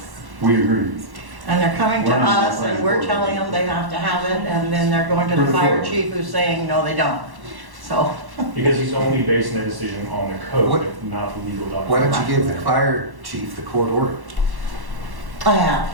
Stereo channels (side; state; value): left; late; 1.1 ms